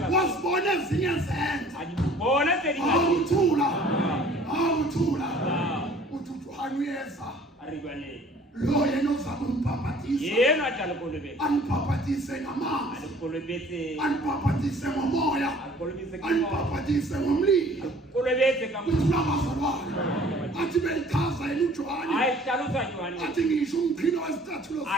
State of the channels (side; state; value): both; normal; correlation 0.53